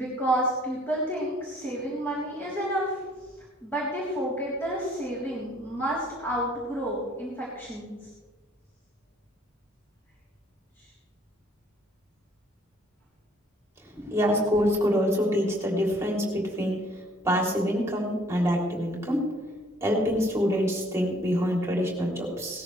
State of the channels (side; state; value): both; normal; correlation 0.60